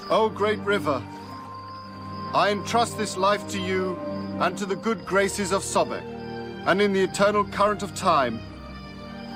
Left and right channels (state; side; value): identical; both; correlation 1.00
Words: O great river, I entrust this life to you and to the good graces of Sobek, and in the eternal current of time,